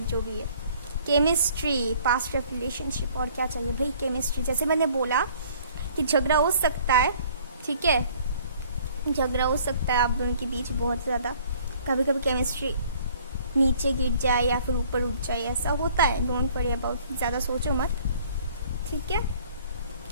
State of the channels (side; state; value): both; inverted; correlation -0.56